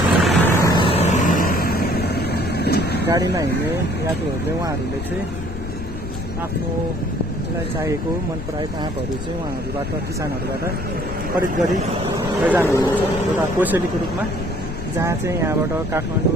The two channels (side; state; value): left; noise; rumble, 9 dB below the sound